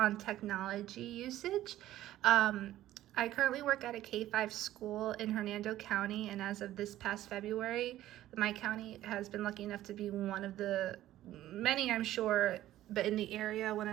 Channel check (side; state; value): left; quieter; 14.0 dB